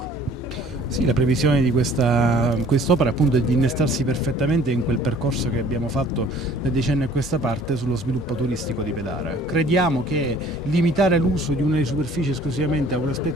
Sì, la previsione di quest'opera appunto è di innestarsi perfettamente in quel percorso che abbiamo fatto da decenni a questa parte sullo sviluppo turistico di Pedara. Crediamo che limitare l'uso di una superficie esclusivamente a un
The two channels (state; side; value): normal; both; correlation 0.53